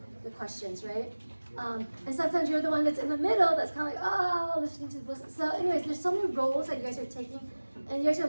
the questions, right? And sometimes you're the one that's in the middle that's kind of like, oh, listening to the listen. So anyways, there's so many roles that you guys are taking, and you guys are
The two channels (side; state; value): both; inverted; correlation -1.00